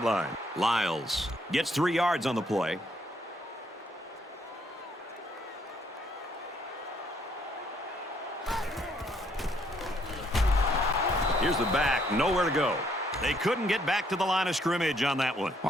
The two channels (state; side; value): normal; both; correlation 0.69